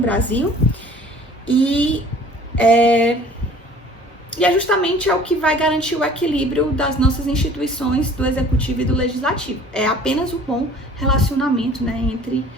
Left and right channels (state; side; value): normal; both; correlation 0.50